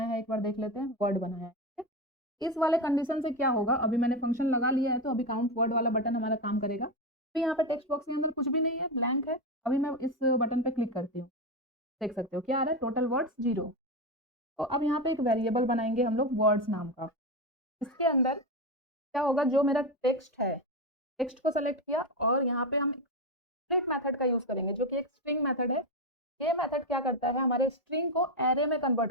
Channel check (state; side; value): normal; both; correlation 0.13